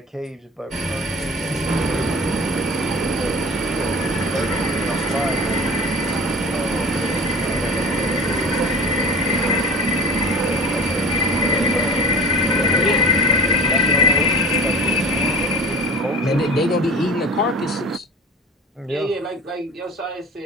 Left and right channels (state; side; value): normal; both; correlation 0.38